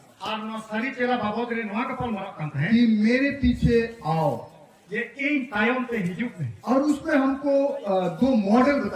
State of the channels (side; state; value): both; identical; correlation 1.00